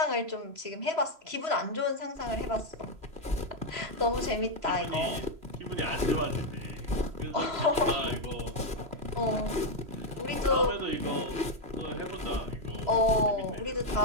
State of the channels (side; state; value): left; late; 3.0 ms